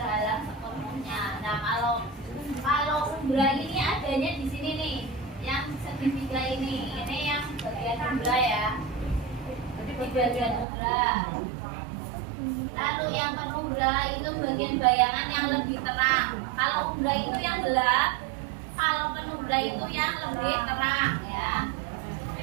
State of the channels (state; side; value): drops out; left; at 10.7 s